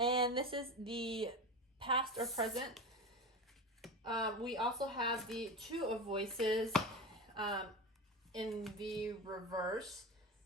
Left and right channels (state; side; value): normal; both; correlation 0.25